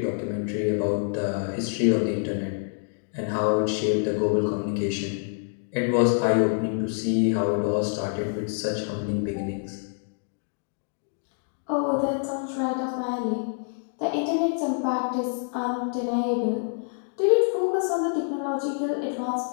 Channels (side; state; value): right; silent; 60 dB below the other